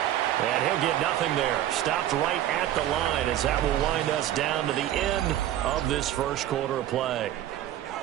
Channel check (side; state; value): left; quieter; 12.5 dB